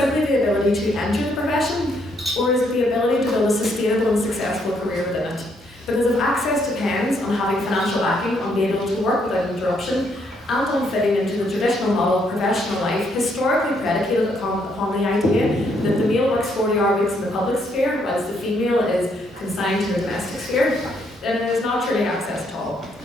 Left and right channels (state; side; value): normal; both; correlation 0.72